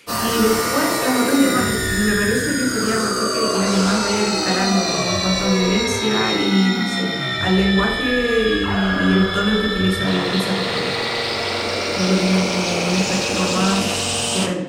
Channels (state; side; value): identical; both; correlation 1.00